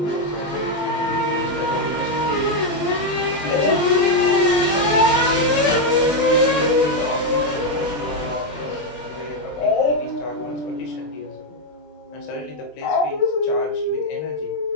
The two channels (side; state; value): right; late; 20 ms